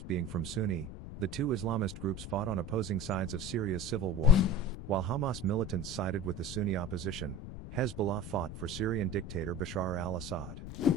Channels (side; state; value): left; noise; rumble, 10 dB below the sound